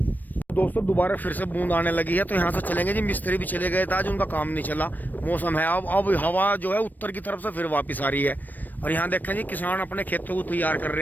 दोस्तों दोबारा फिर से बूंद आने लगी है, तो यहाँ से चलेंगे जी। मिस्त्री भी चले गए थे आज, उनका काम नहीं चला। मौसम है अब हवा जो है उत्तर की तरफ से फिर वापस आ रही है। और यहाँ देखें जी किसान अपने खेतों को तैयार कर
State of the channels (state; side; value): late; right; 0.087 ms